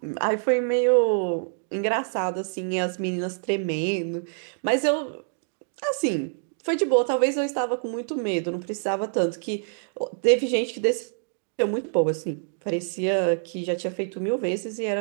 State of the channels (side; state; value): left; silent; digital silence